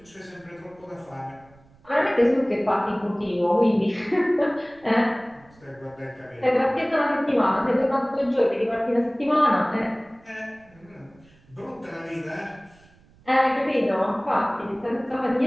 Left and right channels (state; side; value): noise; right; rumble, 29 dB below the sound